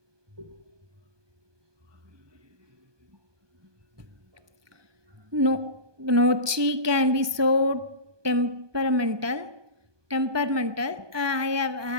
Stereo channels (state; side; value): late; left; 1.2 ms